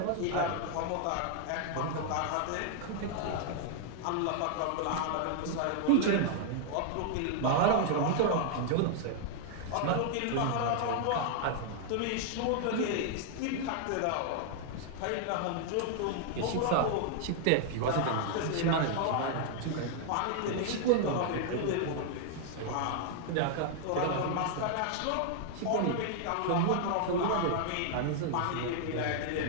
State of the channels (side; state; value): both; different; correlation 0.00